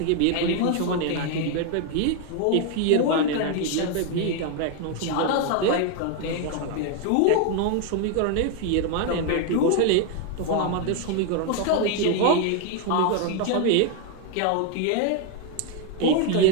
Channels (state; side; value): different; both; correlation 0.01